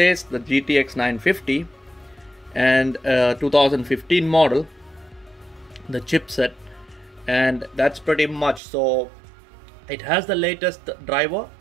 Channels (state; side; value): drops out; left; at 8.6 s